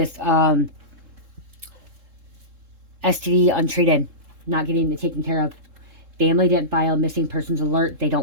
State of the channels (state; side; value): late; left; 3.7 ms